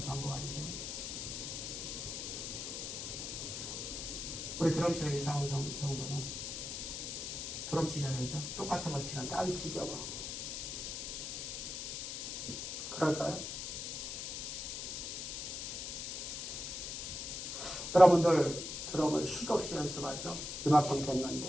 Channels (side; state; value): left; noise; hiss, 5 dB below the sound